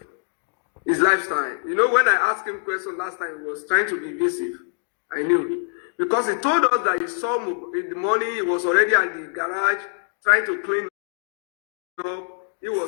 His lifestyle. You know, when I asked him question last time, he was trying to be evasive. I knew. Because he told us that he saw in the morning, he was already at the garage trying to clean up. He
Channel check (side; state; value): right; silent; digital silence